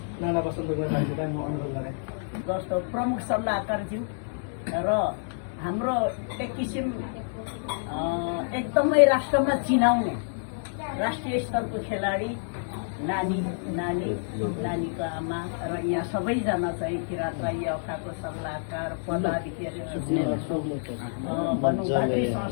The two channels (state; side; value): silent; right; digital silence